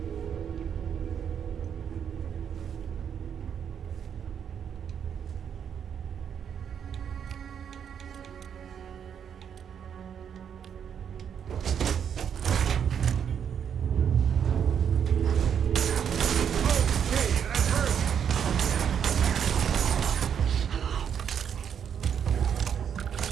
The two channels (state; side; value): quieter; left; 8.1 dB